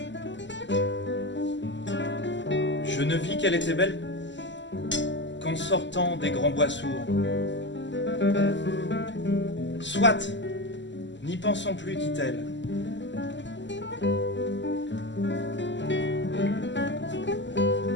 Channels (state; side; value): late; right; 0.53 ms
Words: Je ne vis qu'elle était belle qu'en sortant des grands bois sourds. Soit, n'y pensons plus, dit-elle.